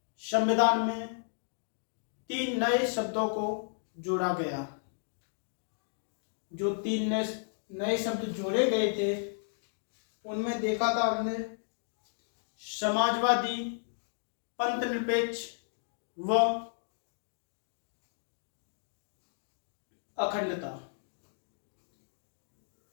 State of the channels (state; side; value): silent; right; digital silence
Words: संविधान में 3 नए शब्दों को जोड़ा गया। जो 3 नए शब्द जोड़े गए थे उनमें देखा था हमने समाजवादी, पंथनिरपेक्ष व अखंडता।